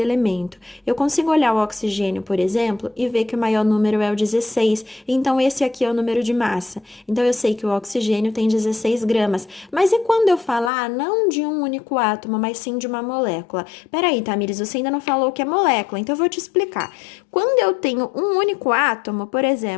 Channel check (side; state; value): right; drops out; at 10.7 s